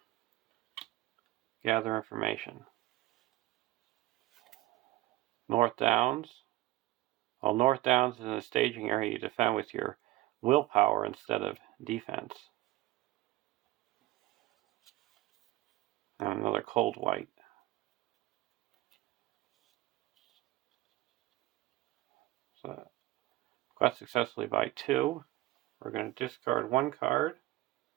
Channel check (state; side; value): quieter; left; 17.3 dB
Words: gather information. North Downs. While North Downs is in a staging area, you defend with your willpower instead of defense. And another cold white. So quest successfully by 2. We're going to discard 1 card.